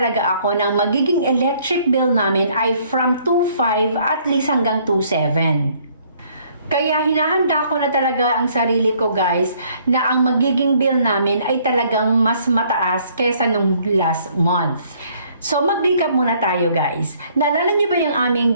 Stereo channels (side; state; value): both; inverted; correlation -0.63